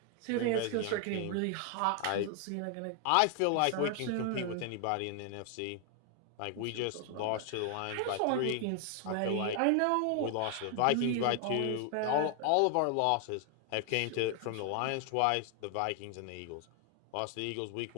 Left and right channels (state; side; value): different; both; correlation 0.00